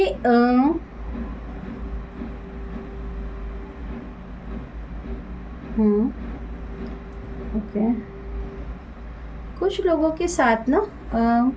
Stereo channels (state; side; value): identical; both; correlation 1.00